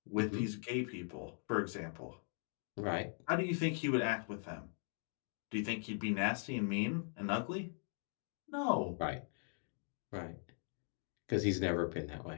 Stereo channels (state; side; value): silent; right; 51 dB below the other